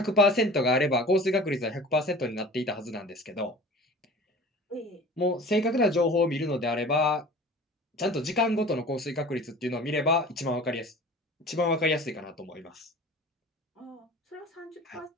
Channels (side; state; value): both; normal; correlation 0.41